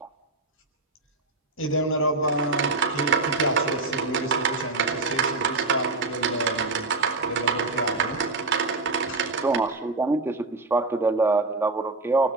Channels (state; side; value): quieter; left; 3.4 dB